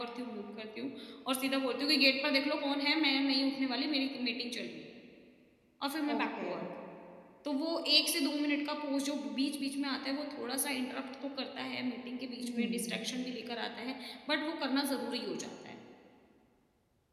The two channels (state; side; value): identical; both; correlation 1.00